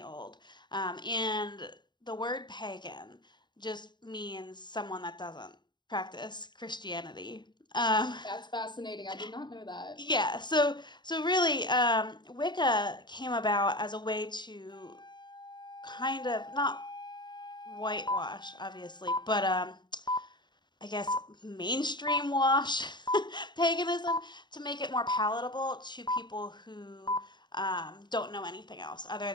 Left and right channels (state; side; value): late; right; 0.21 ms